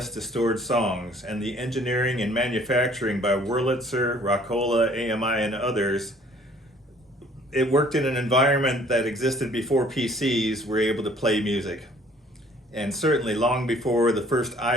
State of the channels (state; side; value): normal; both; correlation 0.57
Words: to stored songs, and the engineering and manufacturing by Wurlitzer, Rockola, AMI, and others, it worked in an environment that existed before PCs were able to play music. And certainly long before the first